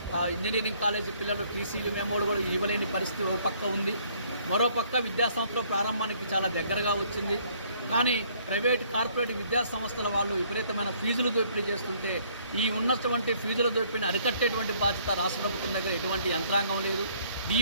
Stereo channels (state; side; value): inverted; both; correlation -0.63